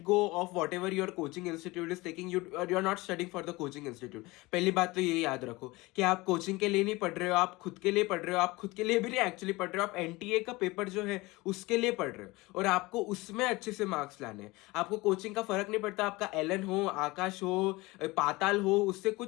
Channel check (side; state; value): right; quieter; 22.0 dB